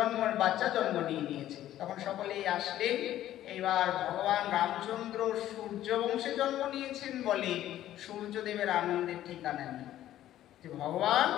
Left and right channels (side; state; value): right; quieter; 12.9 dB